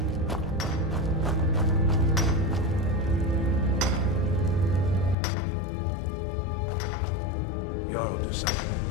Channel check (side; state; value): right; drops out; at 5.2 s